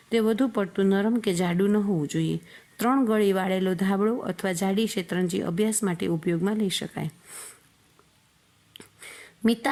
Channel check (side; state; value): both; identical; correlation 1.00